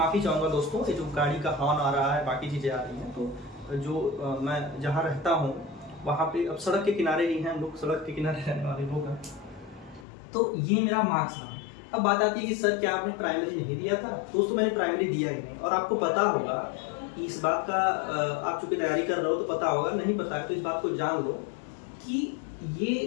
चाहूँगा दोस्तों, ये जो गाड़ी का हॉर्न आ रहा है, बाकी चीज़ें आ रही हैं, तो जो मैं जहाँ रहता हूँ वहाँ पे, अब सड़क के किनारे ही हैं हम लोग, सड़क के किनारे रहने वाले लोग हैं। तो ये मेरा मार्क्स रहा। अब बात आती है कि सर क्या आपने प्राइमरी नहीं दिया था? दोस्तों मैंने प्राइमरी दिया ही नहीं, और आपको पता होगा इस बात का, आप चूंकि तैयारी कर रहे हो तो पता होगा, नहीं पता है तो इस बात को जान लो कि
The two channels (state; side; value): drops out; right; at 10.1 s